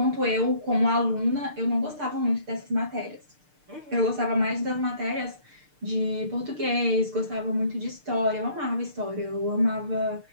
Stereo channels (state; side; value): late; left; 6.6 ms